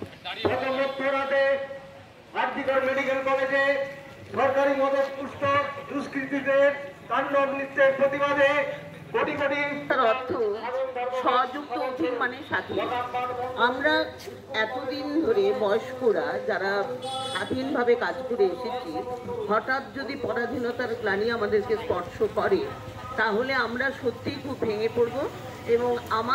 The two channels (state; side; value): identical; both; correlation 1.00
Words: মেডিকেল কলেজে সরকারি মদত পুষ্ট দুষ্কৃতীদের তাণ্ডব নৃত্যের প্রতিবাদে কোটি কোটি, তার অর্থ স্বযুক্ত অধীন মানে স্বাধীন। আমরা এতদিন ধরে বয়স্করা যারা স্বাধীনভাবে কাজ করে এসেছি, হঠাৎ যদি পরাধীনতার গ্লানি আমাদেরকে স্পর্শ করে, তাহলে আমরা সত্যিই খুব ভেঙে পড়ব এবং